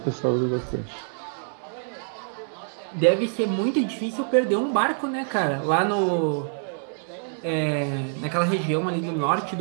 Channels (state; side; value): silent; left; digital silence